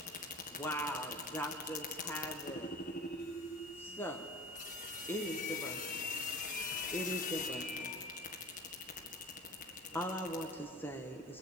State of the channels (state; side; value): normal; both; correlation 0.39